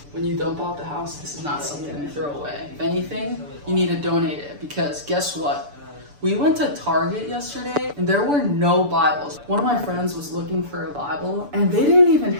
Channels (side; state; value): left; late; 6.9 ms